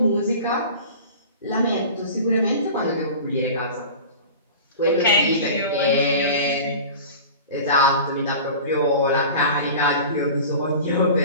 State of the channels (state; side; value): inverted; both; correlation -0.38